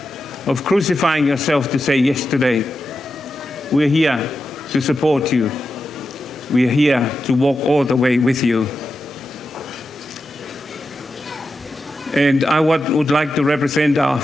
of crucifying yourself to say yes today. We're here to support you. We're here to walk all the way with you. And I would like to represent our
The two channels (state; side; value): normal; both; correlation 0.89